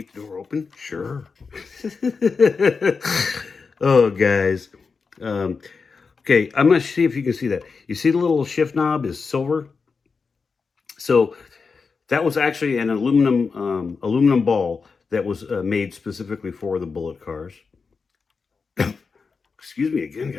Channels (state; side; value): quieter; right; 4.9 dB